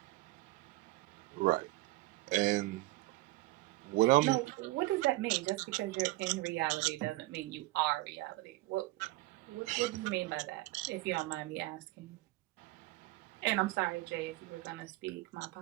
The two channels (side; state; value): left; quieter; 19.7 dB